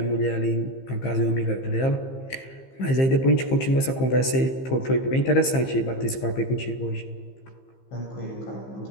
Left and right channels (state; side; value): late; right; 15 ms